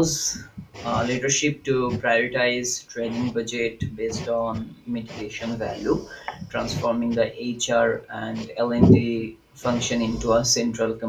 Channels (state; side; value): identical; both; correlation 1.00